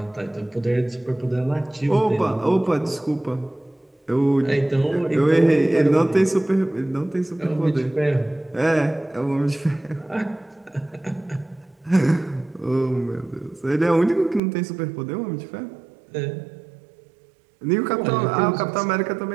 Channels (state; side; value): drops out; left; at 14.4 s